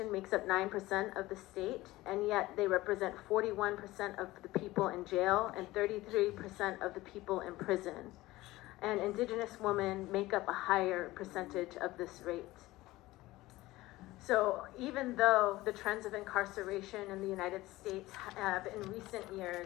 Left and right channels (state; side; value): quieter; right; 18.2 dB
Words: makes up 9% of the state, and yet they represent 41% of the people in jail and 33% of the people in prison. And Indigenous women make up a higher percentage of this rate. So even though the trends of incarceration in the United States have in recent